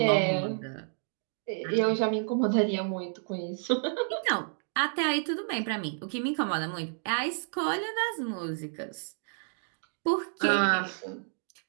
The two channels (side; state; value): left; silent; 58 dB below the other